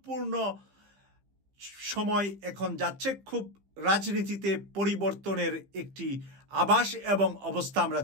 সময় এখন যাচ্ছে। খুব রাজনীতিতে পরিবর্তনের একটি আভাস এবং অবস্থা আমরা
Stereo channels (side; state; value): left; late; 15 ms